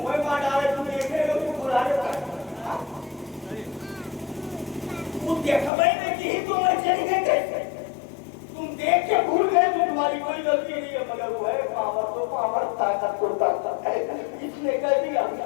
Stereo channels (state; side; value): drops out; right; at 5.7 s